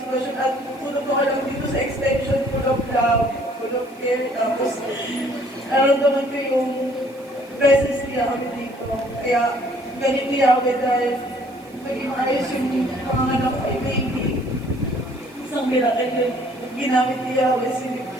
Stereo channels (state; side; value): noise; right; hiss, 28 dB below the sound